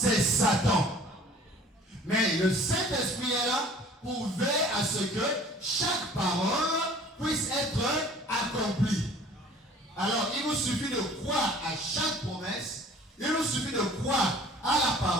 Satan. Mais le Saint-Esprit est là pour veiller à ce que chaque parole puisse être accomplie. Alors, il nous suffit de croire à chaque promesse, il nous suffit de croire à la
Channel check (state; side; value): normal; both; correlation 0.50